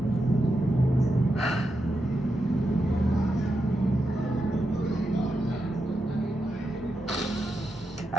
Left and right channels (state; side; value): normal; both; correlation 0.86